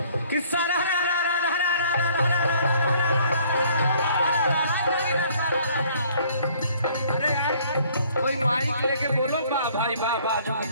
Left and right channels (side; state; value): both; inverted; correlation -0.59